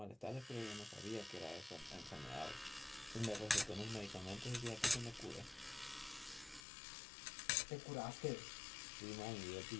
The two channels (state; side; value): drops out; right; at 6.7 s